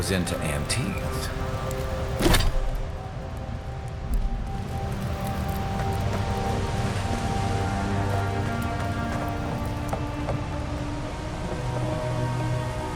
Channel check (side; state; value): both; identical; correlation 1.00